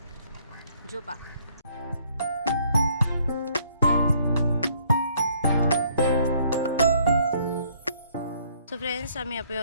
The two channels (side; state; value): both; inverted; correlation -0.64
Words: जेवपाक सो फ्रेंड्स आमी